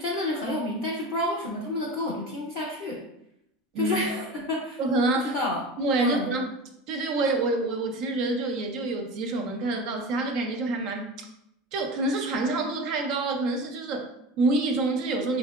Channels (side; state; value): both; normal; correlation 0.30